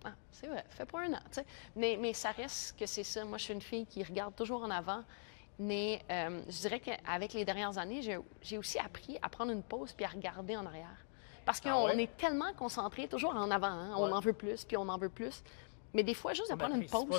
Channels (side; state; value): right; silent; digital silence